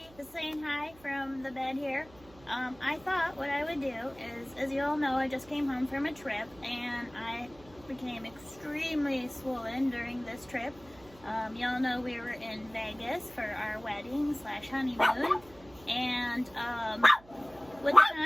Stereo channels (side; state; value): right; noise; hum, 24 dB below the sound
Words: just saying hi from the bed here. I thought what I would do is, as you all know, I just came home from a trip and I became extremely swollen during this trip. Y'all know we were in Vegas for our wedding / honeymoon, and with the